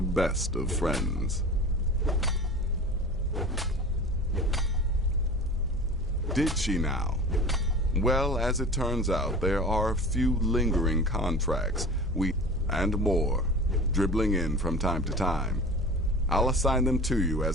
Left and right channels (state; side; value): normal; both; correlation 0.37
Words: best of friends. Did she now? Well, as it turns out, there are a few lingering contracts, and more, dribbling in from time to time. I'll assign them to you